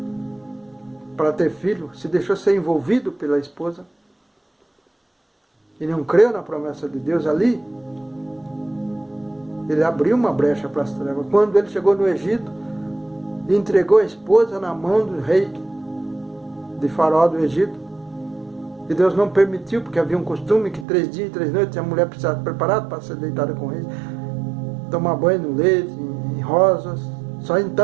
para ter filho, se deixou ser envolvido pela esposa, e não creu na promessa de Deus ali, ele abriu uma brecha para as trevas. Quando ele chegou no Egito, entregou a esposa na mão do rei de Faraó do Egito, e Deus não permitiu, porque havia um costume que 3 dias e 3 noites a mulher precisava estar preparada para ser deitada com ele, tomar banho no leite, em rosas, só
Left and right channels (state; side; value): drops out; left; at 20.9 s